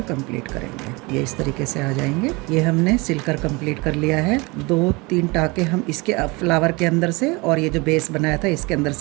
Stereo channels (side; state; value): left; quieter; 25.7 dB